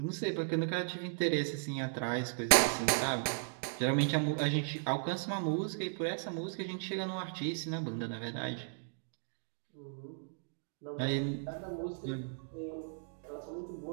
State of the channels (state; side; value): silent; left; digital silence